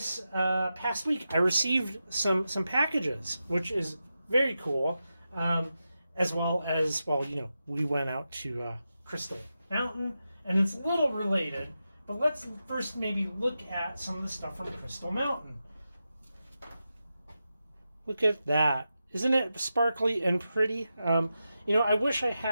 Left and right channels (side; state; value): both; inverted; correlation -0.90